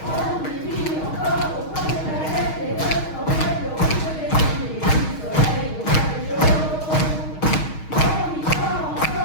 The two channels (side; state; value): right; late; 6.4 ms